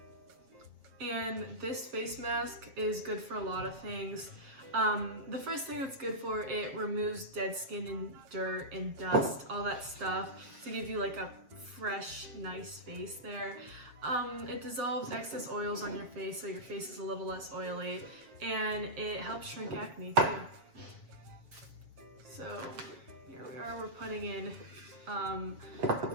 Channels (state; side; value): late; left; 7.5 ms